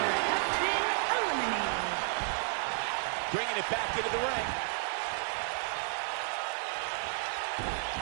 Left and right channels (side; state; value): left; silent; 56 dB below the other